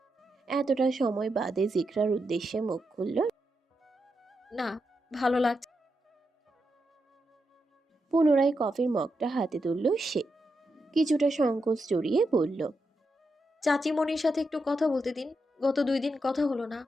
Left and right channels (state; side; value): normal; both; correlation 0.85